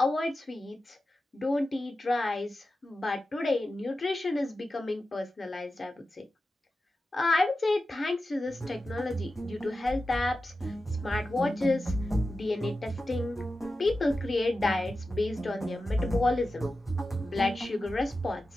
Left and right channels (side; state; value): both; normal; correlation 0.92